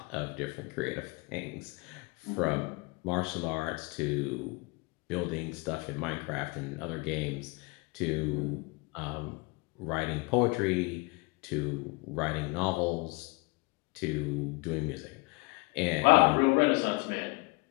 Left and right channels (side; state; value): right; quieter; 27.0 dB